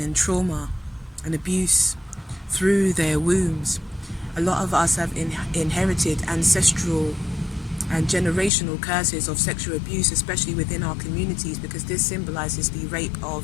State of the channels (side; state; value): right; drops out; at 8.5 s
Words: and trauma and abuse through their wombs. A lot of us have inherited ancestral and generational curses of sexual abuse, especially within our communities, because this symbolizes the rape